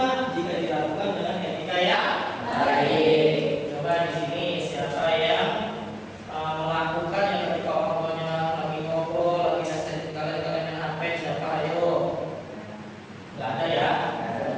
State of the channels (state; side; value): identical; both; correlation 1.00